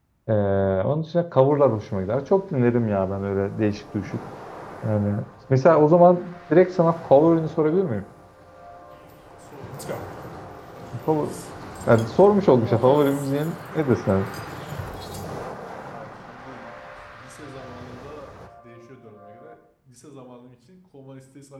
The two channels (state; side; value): identical; both; correlation 1.00